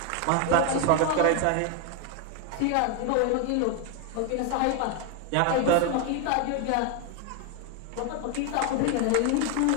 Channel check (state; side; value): different; both; correlation 0.01